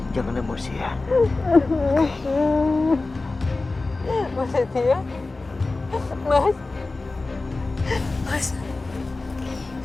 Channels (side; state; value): right; quieter; 3.4 dB